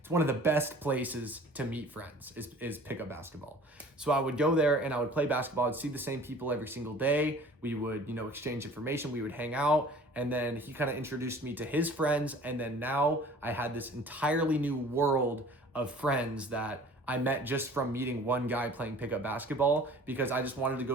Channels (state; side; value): normal; both; correlation 0.47